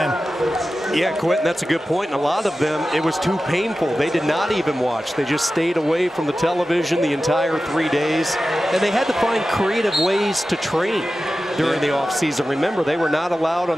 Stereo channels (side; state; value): both; normal; correlation 0.94